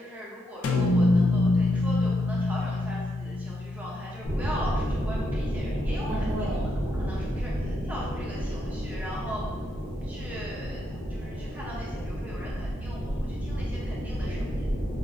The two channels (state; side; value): normal; both; correlation 0.81